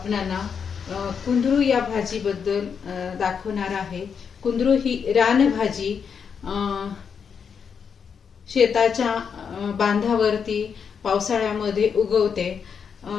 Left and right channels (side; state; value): right; quieter; 6.7 dB